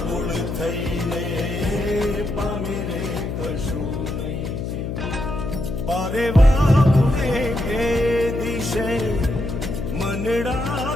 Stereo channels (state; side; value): noise; left; hum, 4 dB below the sound